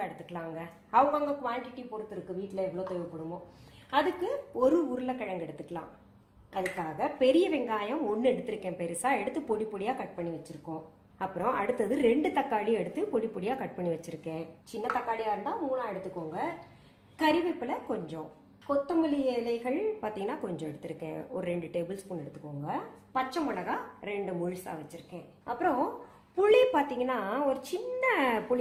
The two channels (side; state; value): both; identical; correlation 1.00